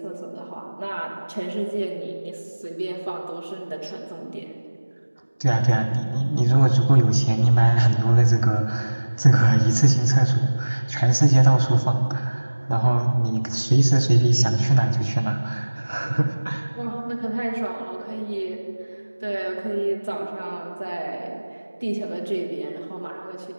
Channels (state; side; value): inverted; both; correlation -1.00